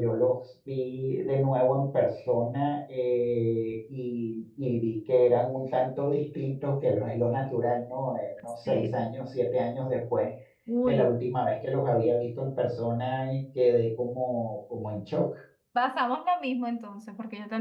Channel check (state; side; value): identical; both; correlation 1.00